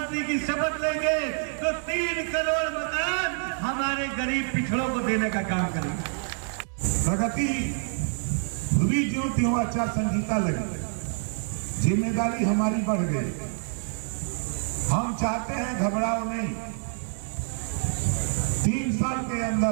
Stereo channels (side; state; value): left; silent; 60 dB below the other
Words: की शपथ लेंगे तो 3 करोड़ मकान हमारे गरीब पिछड़ों को देने का काम करेंगे। प्रगति हुई जो त्यों आचार संहिता लगी, जिम्मेदारी हमारी बढ़ गई। हम चाहते हैं घबराओ नहीं। 3 साल के